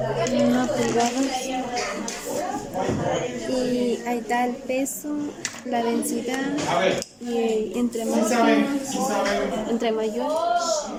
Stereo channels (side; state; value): both; identical; correlation 1.00